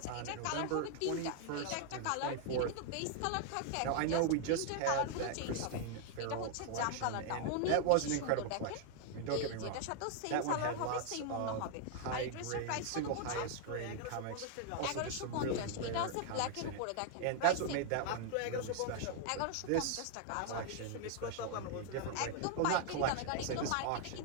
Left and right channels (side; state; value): both; different; correlation 0.00